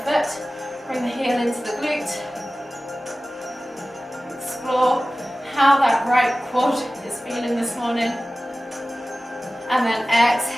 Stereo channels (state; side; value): normal; both; correlation 0.96